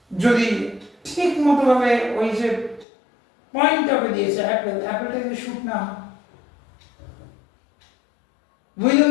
যদি ঠিক মতো ভাবে ওই যে পয়েন্টটাকে দিয়েছে অ্যাপেলটাকে শুট না। Will you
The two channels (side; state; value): right; drops out; at 2.9 s